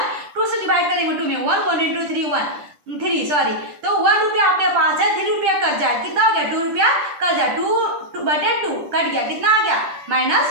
2 से डिवाइड करेंगे 2 में 1 1 × 3 सॉरी, तो 1 रुपया आपके पास है, 3 रुपया कट जाए, कितना हो गया 2 रुपया कट जाए, 2/2 कट गया, कितना आ गया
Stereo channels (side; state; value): left; late; 10 ms